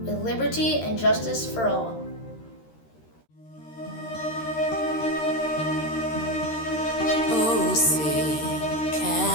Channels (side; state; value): right; late; 13 ms